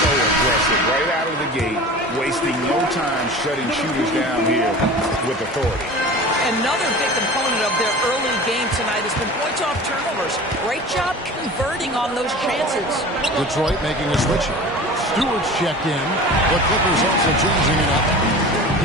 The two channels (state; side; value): normal; both; correlation 0.37